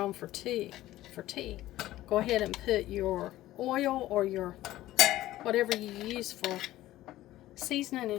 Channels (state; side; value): quieter; right; 15.4 dB